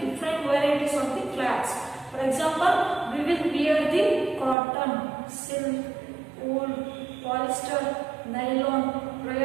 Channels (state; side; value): drops out; left; at 4.5 s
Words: different varieties of the clothes. For example, we will wear the cotton, silk, wool, polyester, nylon,